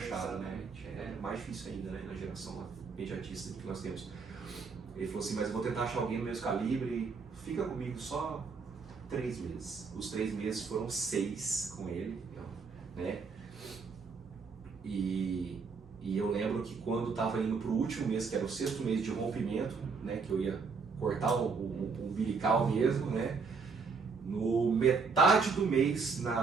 né? É mais difícil ainda, né, na geração imediatista que nós temos. Ele falou assim, mas eu vou tentar achar alguém do mesmo calibre, fica comigo só 3 meses. Os 3 meses foram 6 com ele, né? E eu lembro que quando estava indo para o último mês, que era o 6º mês de rompimento, né, que eu ia cortar o umbilical mesmo, né? No metade do mês,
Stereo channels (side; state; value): left; quieter; 5.0 dB